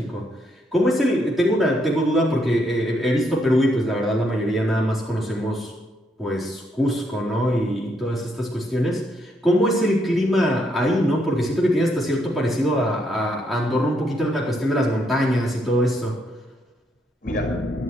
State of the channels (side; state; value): both; normal; correlation 0.75